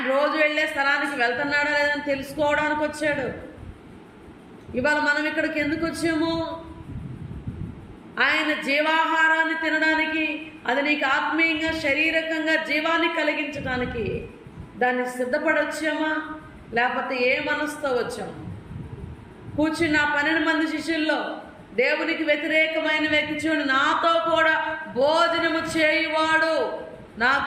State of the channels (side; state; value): both; identical; correlation 1.00